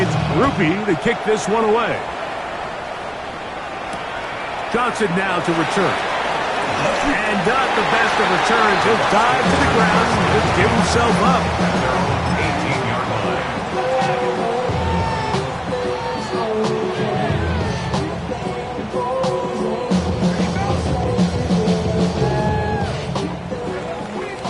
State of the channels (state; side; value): identical; both; correlation 1.00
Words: Rupi to kick this one away. Johnson now to return. And not the best of returns. He'll dive to the ground and just give himself up. 18-yard line.